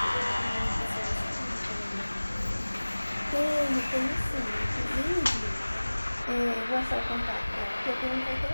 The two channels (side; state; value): both; inverted; correlation -1.00